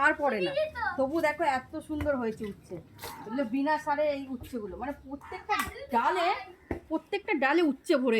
পড়ে না, তবু দেখো এত সুন্দর হয়েছে উচ্ছে, এগুলো বিনা সারে এই উচ্ছেগুলো, মানে প্রত্যেকটা ডালে উচ্ছে ভরে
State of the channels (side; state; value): both; identical; correlation 1.00